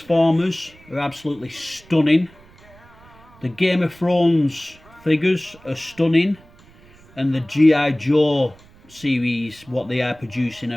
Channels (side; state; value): right; noise; rumble, 26 dB below the sound